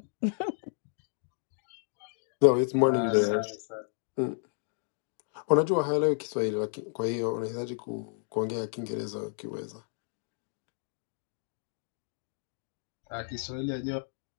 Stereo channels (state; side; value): silent; right; 56 dB below the other